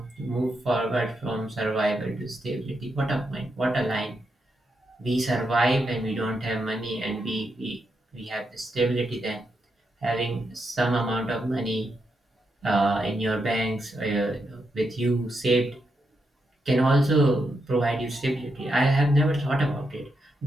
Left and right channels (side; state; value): both; normal; correlation 0.83